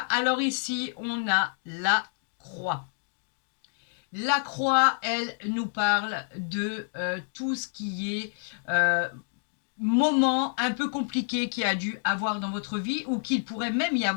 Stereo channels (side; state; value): right; silent; digital silence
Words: ici, on a la croix. La croix, elle nous parle de tout ce qui est moment un peu compliqué qu'il y a dû avoir dans votre vie ou qu'il pourrait même y